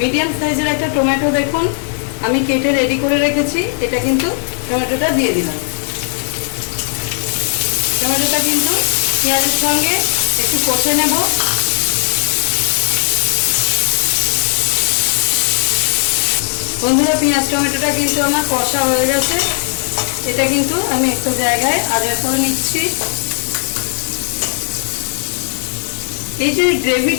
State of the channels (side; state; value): right; silent; 56 dB below the other